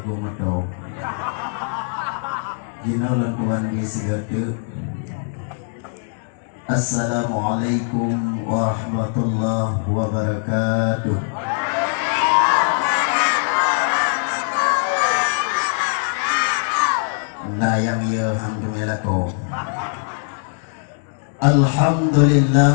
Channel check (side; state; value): right; silent; 62 dB below the other